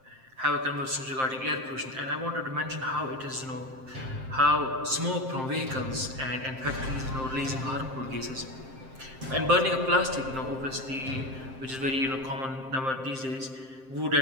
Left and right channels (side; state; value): left; late; 7.6 ms